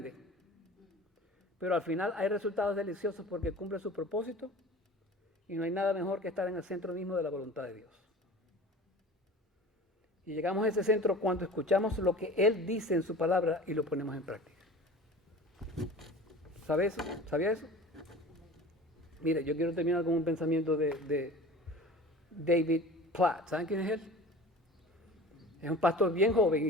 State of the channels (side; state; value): both; normal; correlation 0.39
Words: Pero al final hay resultados deliciosos porque cumple su propósito y no hay nada mejor que estar en el centro mismo de la voluntad de Dios. Y llegamos a ese centro cuando escuchamos lo que Él dice en su palabra y lo ponemos en práctica. ¿Sabe eso? ¿Sabía eso? Mire, yo quiero terminar con un pensamiento de David Platt. ¿Saben quién es él? Es un pastor bien joven